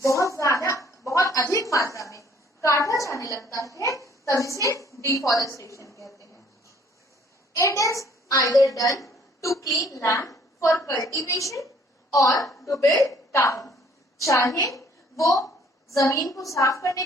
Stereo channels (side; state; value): both; normal; correlation 0.60